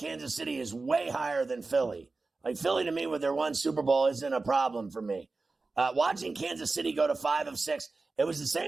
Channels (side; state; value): left; quieter; 3.7 dB